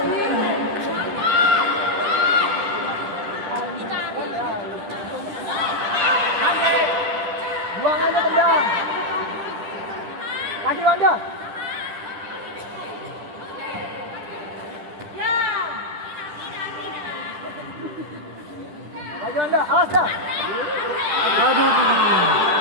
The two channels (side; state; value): left; late; 10 ms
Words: Buang aja tendang. Kaki Wanda. Maju Anda, awas dah. Aduh.